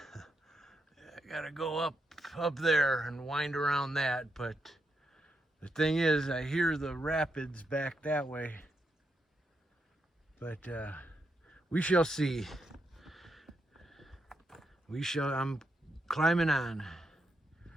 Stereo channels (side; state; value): both; normal; correlation 0.82